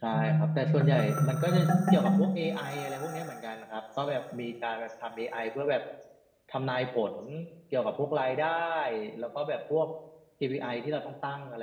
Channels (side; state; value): both; identical; correlation 1.00